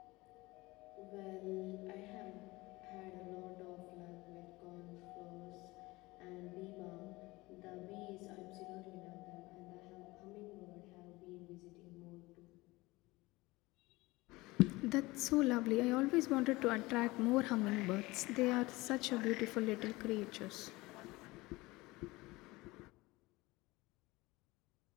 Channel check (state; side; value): quieter; right; 21.3 dB